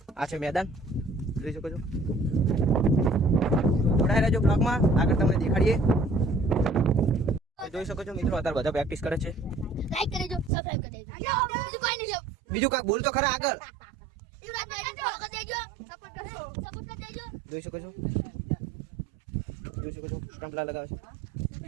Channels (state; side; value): drops out; left; at 10.5 s